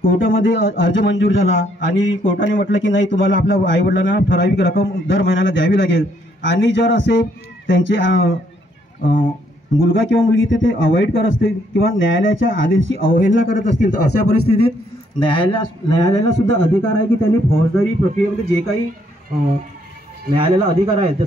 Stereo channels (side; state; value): both; normal; correlation 0.70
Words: कोर्टामध्ये अर्ज मंजूर झाला आणि कोर्टाने म्हटलं की नाही तुम्हाला आपल्या आईवडिलांना ठराविक रक्कम दर महिन्याला द्यावी लागेल, आणि जर असे त्यांचे मुलगा किंवा मुलगी ते अवॉइड करत असतील किंवा न्यायालयाच्या आदेशाची अवहेलना करत असतील तर अशा परिस्थितीत न्यायालयाला सुद्धा अधिकार आहे की त्यांनी फौजदारी प्रक्रियेमध्ये जे काही न्यायालयाला अधिकार आहेत,